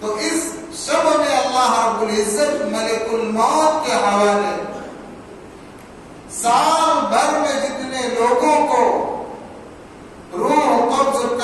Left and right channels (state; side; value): identical; both; correlation 1.00